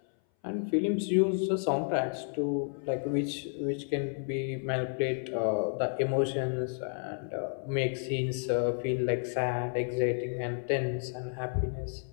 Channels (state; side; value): silent; right; 57 dB below the other